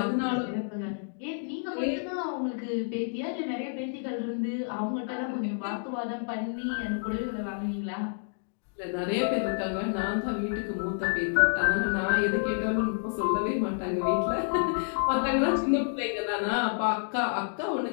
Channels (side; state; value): right; silent; digital silence